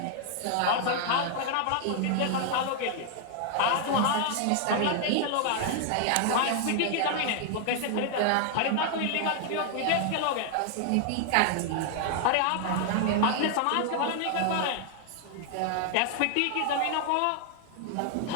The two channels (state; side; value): different; both; correlation 0.00